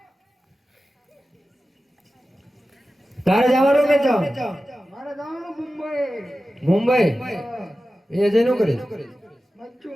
તારે જવાનું કે જાવ? મારે જવાનું મુંબઈ. મુંબઈ એ જઈને કરી મચ્છુ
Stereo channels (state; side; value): normal; both; correlation 0.94